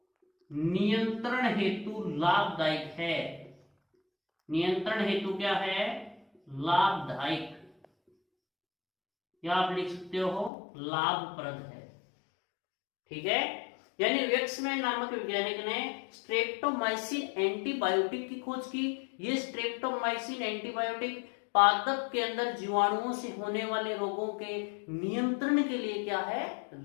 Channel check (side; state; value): right; drops out; at 10.5 s